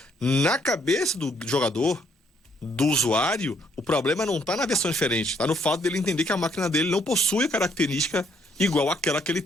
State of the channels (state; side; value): normal; both; correlation 0.69